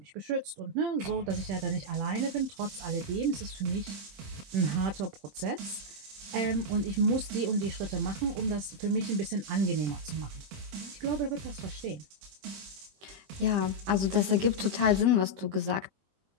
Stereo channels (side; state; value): left; late; 21 ms